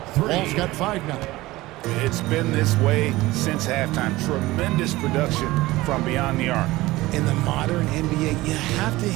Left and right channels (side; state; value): left; quieter; 18.8 dB